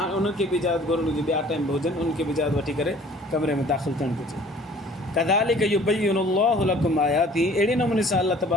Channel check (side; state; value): both; normal; correlation 0.52